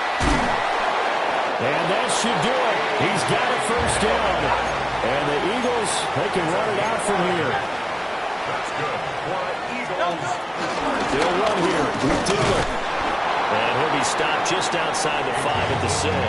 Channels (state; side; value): identical; both; correlation 1.00